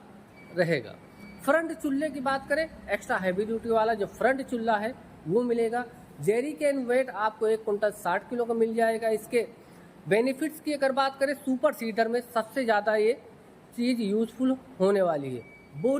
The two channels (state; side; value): identical; both; correlation 1.00